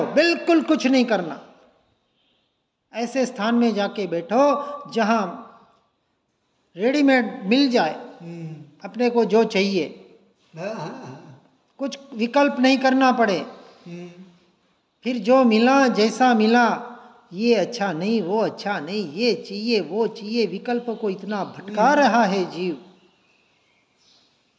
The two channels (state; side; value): identical; both; correlation 1.00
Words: बिल्कुल कुछ नहीं करना। ऐसे स्थान में जाके बैठो जहां रेडीमेड मिल जाए अपने को जो चाहिए, कुछ विकल्प नहीं करना पड़े। फिर जो मिला, जैसा मिला, ये अच्छा नहीं, वो अच्छा नहीं, ये चाहिए, वो चाहिए, विकल्प को इतना भटका रहा है जीव।